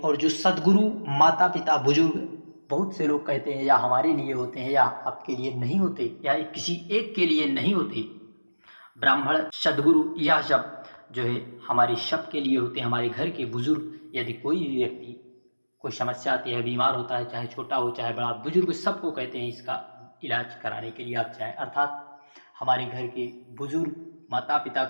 जो सदगुरु माता पिता बुजुर्ग, बहुत से लोग कहते हैं या हमारे लिए होते हैं या आपके लिए नहीं होते या किसी एक के लिए नहीं होते, ब्राह्मण सदगुरु यह सब हमारे सब के लिए होते हैं। हमारे घर के बुजुर्ग, यदि कोई भी व्यक्ति कोई समस्या आती है, बीमार होता है, चाहे छोटा हो चाहे बड़ा, बुजुर्ग सबको कहते हैं इसका इलाज कराने के लिए आप चाहे, अर्थात हमारे घर के बुजुर्ग माता पिता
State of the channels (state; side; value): inverted; both; correlation -1.00